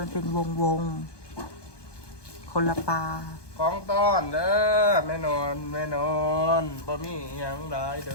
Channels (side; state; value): right; late; 1.2 ms